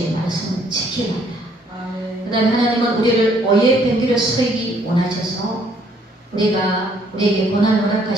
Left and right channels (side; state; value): both; normal; correlation 0.65